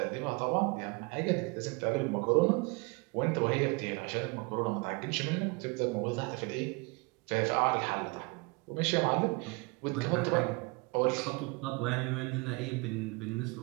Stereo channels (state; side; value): quieter; left; 28.1 dB